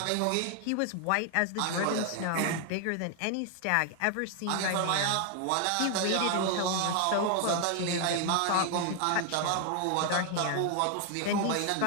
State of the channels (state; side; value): different; both; correlation 0.00